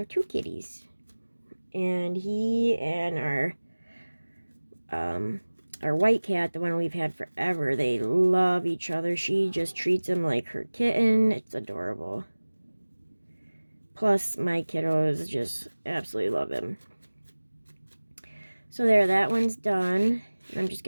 2 kitties. And he and our our white cat, the one we've had forever, they love each other. She just treats him like her kitten. It's adorable. Plus, my kiddos just absolutely love him. So there, that one's done. I'm just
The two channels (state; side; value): inverted; both; correlation -1.00